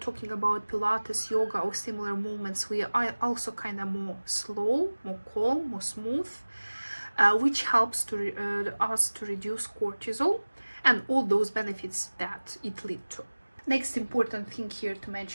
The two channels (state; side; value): inverted; both; correlation -1.00